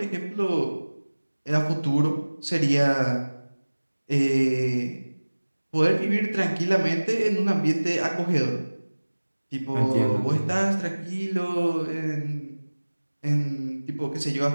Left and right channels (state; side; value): inverted; both; correlation -1.00